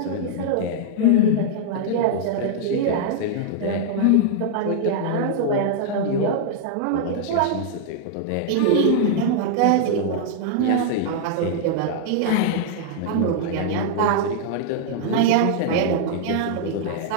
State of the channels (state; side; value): different; both; correlation -0.01